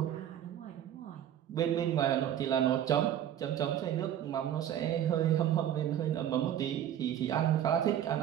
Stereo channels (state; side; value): quieter; left; 10.7 dB